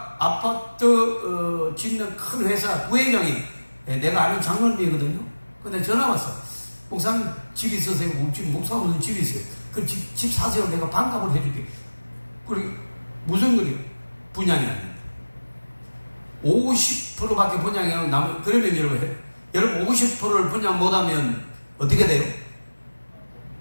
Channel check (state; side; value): inverted; both; correlation -1.00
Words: 아파트 짓는 큰 회사 부회장이 내가 아는 장로님이거든요. 근데 전화 왔어. 목사님 집 있으세요? 목사님 무슨 집이 있어요? 그 집 사세요. 내가 반값을 해줄게. 그리고 무슨 거리요? 분양이 아닙니다. 50%밖에 분양이 안 나면, 그러면 여러분 50%를 분양 못하면 어떻게 돼요?